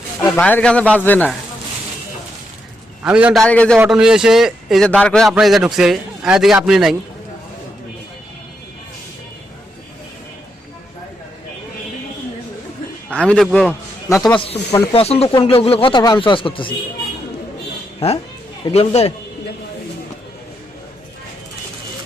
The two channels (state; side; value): normal; both; correlation 0.81